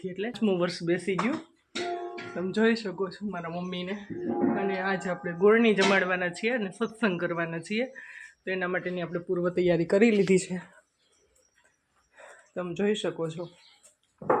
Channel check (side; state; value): both; identical; correlation 1.00